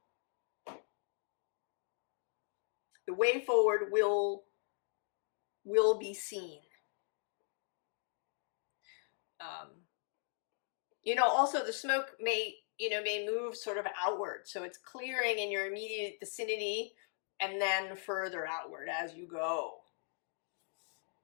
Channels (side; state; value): right; silent; 52 dB below the other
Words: The way forward will be seen. Also the smoke may move sort of outward. So it's clearing in your immediate vicinity and then further outward as you go.